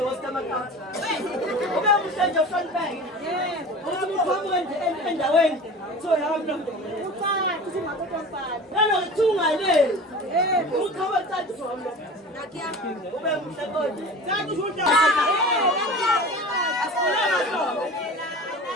wasikamakati ube muhle nje uhlonipheke ukuthi uqhamuke nje endaweni kuthiwa nanokuthungale uqhamuke cathi zomlo ube muhle kodwa asifune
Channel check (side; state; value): both; normal; correlation 0.36